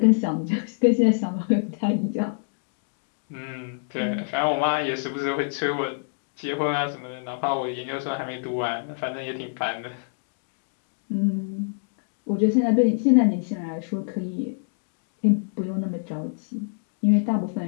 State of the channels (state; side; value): silent; right; digital silence